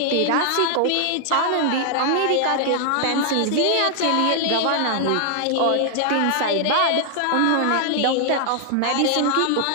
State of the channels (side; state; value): both; different; correlation 0.00